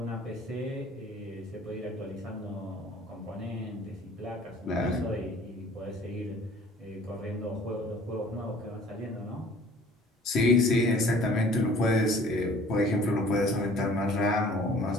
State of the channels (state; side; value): normal; both; correlation 0.51